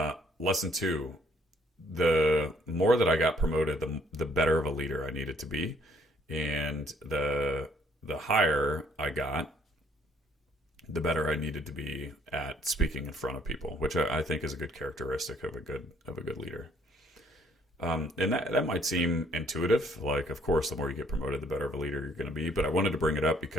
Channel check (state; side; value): normal; both; correlation 0.64